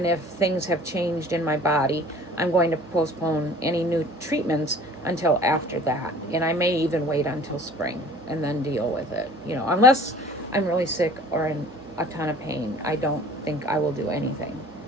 if things have changed in my body, I'm going to postpone any new treatments until after that. And I may even wait until spring and then deal with it. Unless I'm really sick or in a ton of pain, I don't think I will do anything.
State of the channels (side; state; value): both; normal; correlation 0.48